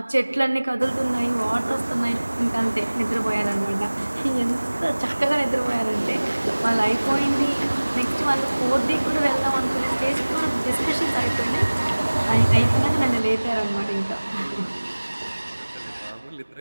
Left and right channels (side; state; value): both; inverted; correlation -1.00